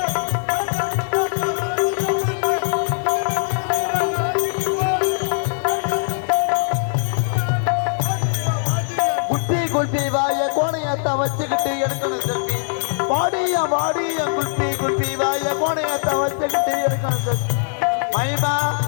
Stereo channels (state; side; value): silent; right; digital silence